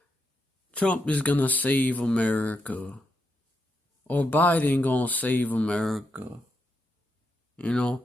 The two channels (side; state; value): both; normal; correlation 0.83